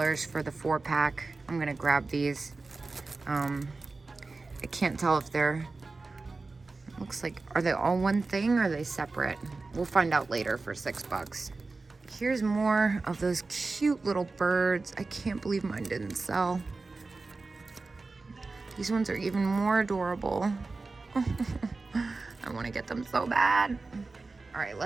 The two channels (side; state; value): left; quieter; 3.7 dB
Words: for the 4-pack. I'm gonna grab these. I can't tell if they're... Looks like, are they all one thing or are they separate? We'll find out later for $6. Here's more of those cute little birds. I can't believe mine didn't sell. These ones are even more adorable. I want to get them so bad. All right,